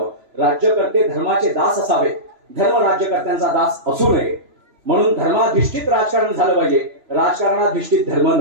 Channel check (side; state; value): left; late; 3.0 ms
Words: राज्यकर्ते धर्माचे दास असावे, धर्म राज्यकर्त्यांचा दास असू नये. म्हणून धर्माधिष्ठित राजकारण झालं पाहिजे, राजकारणाधिष्ठित धर्म